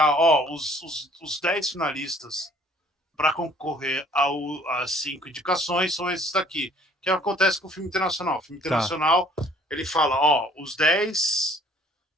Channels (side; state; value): both; normal; correlation 0.56